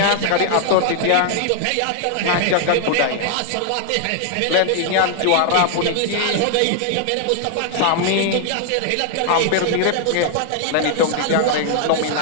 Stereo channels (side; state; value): both; different; correlation 0.00